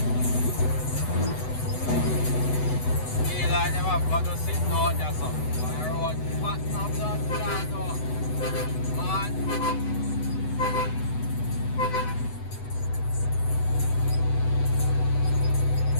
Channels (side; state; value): right; late; 8.0 ms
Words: Feel like them have got to sit down there, so. My road fat no blood clot though. Man.